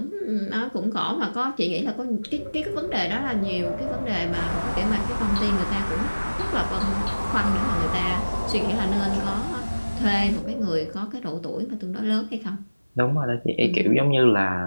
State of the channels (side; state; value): both; inverted; correlation -1.00